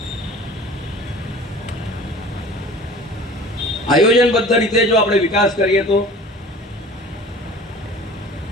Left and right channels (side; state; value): both; normal; correlation 0.43